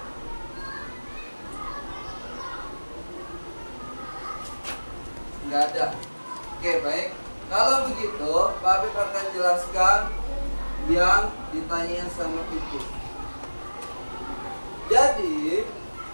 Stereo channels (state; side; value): inverted; both; correlation -1.00